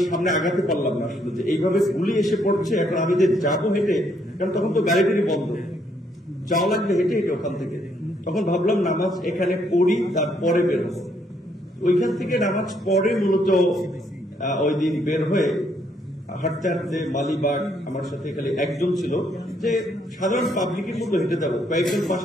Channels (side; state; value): both; normal; correlation 0.71